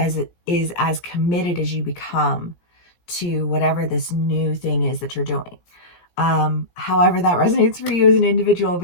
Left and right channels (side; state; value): right; late; 17 ms